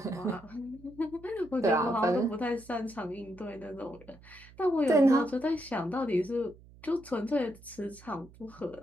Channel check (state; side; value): noise; right; hum, 22 dB below the sound